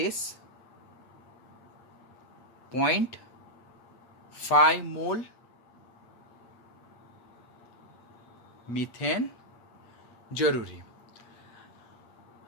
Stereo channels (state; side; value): late; right; 8.3 ms